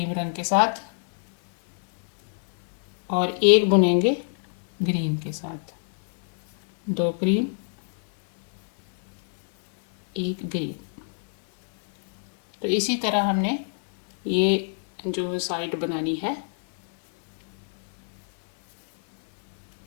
रंग के साथ और एक बुनेंगे ग्रीन के साथ। 2 क्रीम, 1 ग्रीन। तो इसी तरह हमने ये जो साइड बनानी है।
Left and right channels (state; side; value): silent; right; digital silence